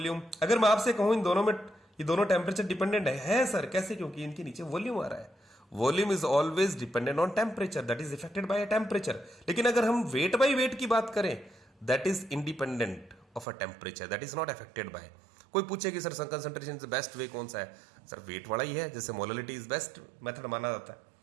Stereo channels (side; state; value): left; drops out; at 13.5 s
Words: अगर मैं आपसे कहूं इन दोनों में, ये दोनों टेम्परेचर डिपेंडेंट है सर, कैसे, क्योंकि इनके नीचे वॉल्यूम आ रहा है। Volume is always dependent on temperature, that is affected by temperature. लेकिन अगर हम वेट बाय वेट की बात करें, that is independent of a temperature, that is not affected by. कोई पूछे कि सर कंसंट्रेशन से बेस्ट वे कौन सा है, सर वेट वाला ही है, जैसे मोलरिटी इज बेस्ट मेथड माना जाता है